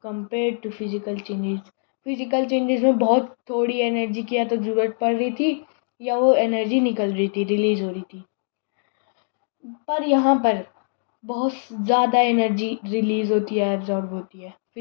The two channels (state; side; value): silent; right; digital silence